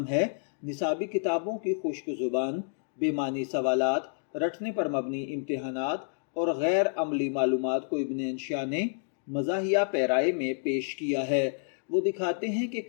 ہے۔ نصابی کتابوں کی خشک زبان، بے معنی سوالات، رٹنے پر مبنی امتحانات اور غیر عملی معلومات کو ابن انشا نے مزاحیہ پیرائے میں پیش کیا ہے۔ وہ دکھاتے ہیں کہ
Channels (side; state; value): right; silent; digital silence